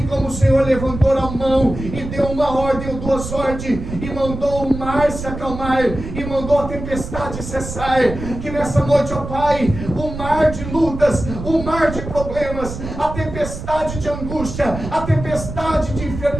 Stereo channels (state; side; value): noise; right; rumble, 8 dB below the sound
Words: como o Senhor levantou a mão e deu uma ordem ou duas ordens, e mandou o mar se acalmar, e mandou a tempestade cessar. Que nessa noite, ó Pai, o mar de lutas, o mar de problemas, a tempestade de angústia, a tempestade de